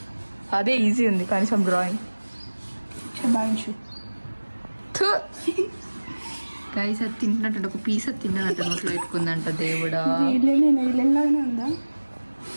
అదే ఈజీ ఉంది కనీసం డ్రాయింగ్. శబాయించు. గైస్ అది తింటున్నట్టు ఒక పీస్ అది తిన్నదంట, నోట్లో పెట్టుకుందంట. దేవుడా, ఇల్లాగానే ఉందా?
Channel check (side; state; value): both; inverted; correlation -1.00